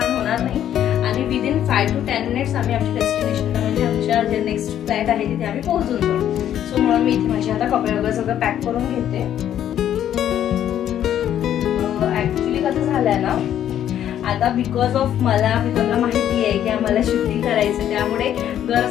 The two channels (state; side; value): quieter; right; 10.7 dB